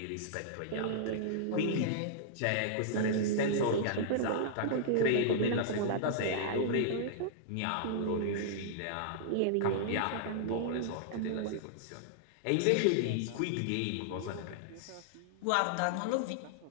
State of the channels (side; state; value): both; different; correlation -0.02